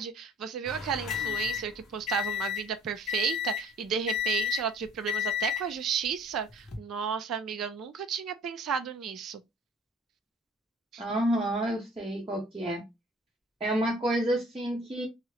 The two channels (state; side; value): normal; both; correlation 0.51